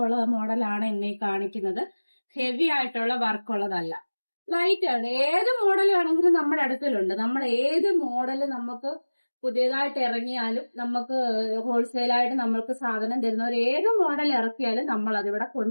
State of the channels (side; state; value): both; inverted; correlation -1.00